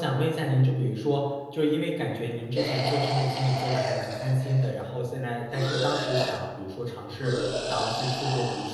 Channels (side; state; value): both; identical; correlation 1.00